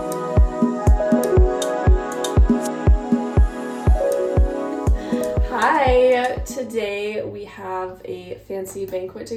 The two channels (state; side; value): identical; both; correlation 1.00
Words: we have a fancy banquet